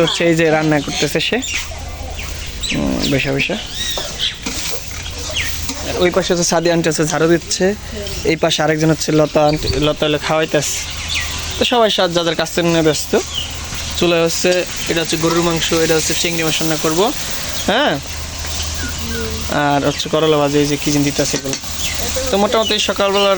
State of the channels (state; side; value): identical; both; correlation 1.00